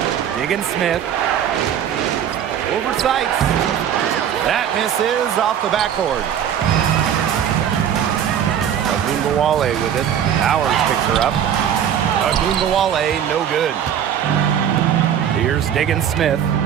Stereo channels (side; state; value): left; quieter; 9.3 dB